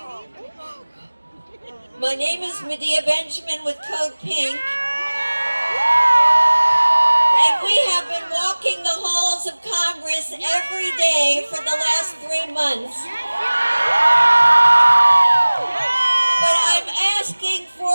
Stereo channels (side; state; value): both; inverted; correlation -1.00